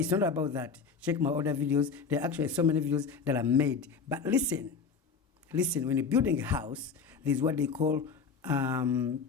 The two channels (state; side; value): quieter; right; 5.5 dB